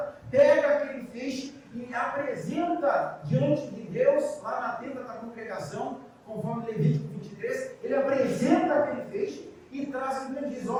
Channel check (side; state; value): both; identical; correlation 1.00